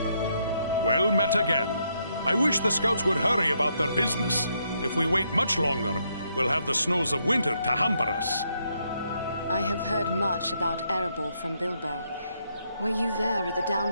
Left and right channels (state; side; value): inverted; both; correlation -0.76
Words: Well met again. I wish the scouts would hurry about their business. If we wait much longer, we'll have the snows of winter to hamper us. I have heard much about Erebor from Bilbo. Were you there at the